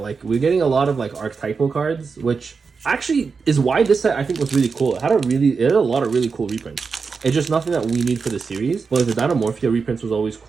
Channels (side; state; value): left; quieter; 5.1 dB